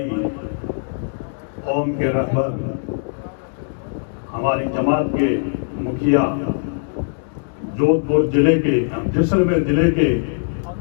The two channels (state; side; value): silent; right; digital silence